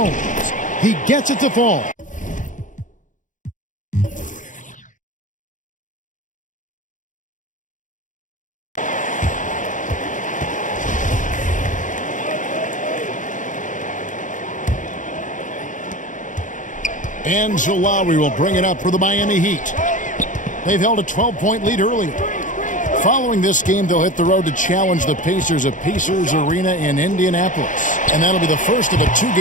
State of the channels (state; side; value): late; right; 0.37 ms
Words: he gets it to fall. And so Lowry will bring it up for the Miami Heat. They've held a 12-point lead earlier. Following this game, they'll hit the road to challenge the Pacers at Pacers Arena in Indianapolis. And that'll be the first of a